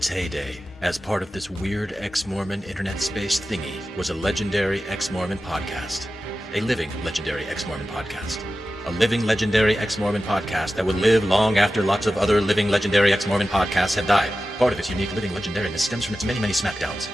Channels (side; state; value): both; normal; correlation 0.94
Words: heyday, as part of this weird Exmormon internet space thingy, was a legendary Exmormon podcast. A living legendary Exmormon podcast. A living legendary Exmormon podcast that would live long after lots of other living legendary Exmormon podcasts had died. Part of its unique living legendariness stems from its many smackdowns.